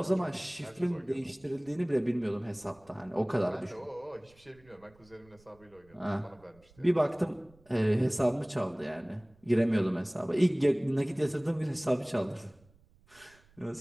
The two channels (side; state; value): right; noise; rumble, 29 dB below the sound